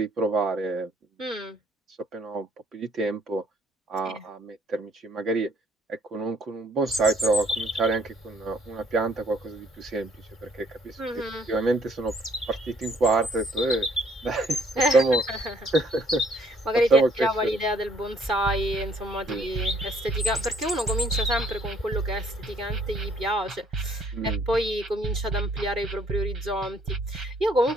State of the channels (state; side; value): normal; both; correlation 0.64